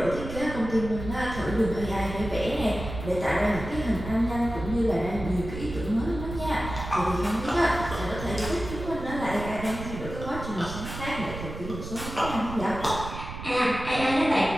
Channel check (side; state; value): right; noise; rumble, 9 dB below the sound